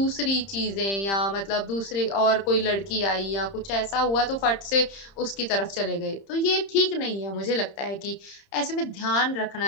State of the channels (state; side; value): late; right; 30 ms